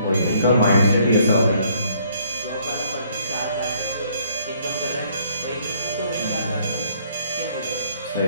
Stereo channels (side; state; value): both; inverted; correlation -0.64